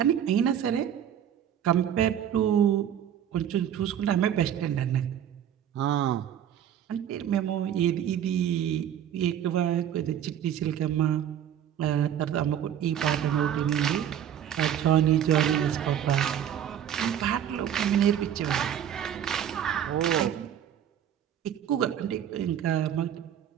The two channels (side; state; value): left; quieter; 9.8 dB